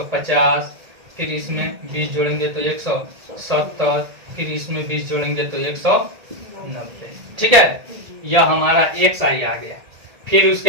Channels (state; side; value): late; left; 1.9 ms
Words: फिर इसमें 20 जोड़ेंगे तो 170, फिर इसमें 20 जोड़ेंगे तो 190, ठीक है। यह हमारा एक्स आई आ गया। फिर